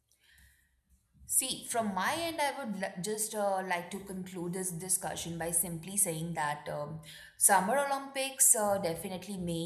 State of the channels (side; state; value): both; identical; correlation 1.00